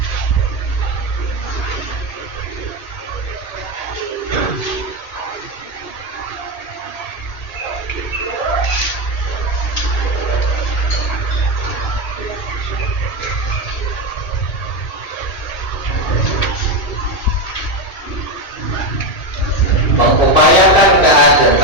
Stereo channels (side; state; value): right; late; 1.8 ms